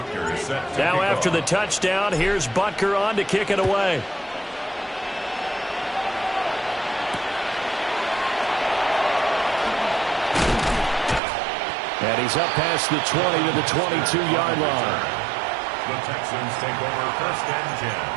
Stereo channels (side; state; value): left; drops out; at 11.2 s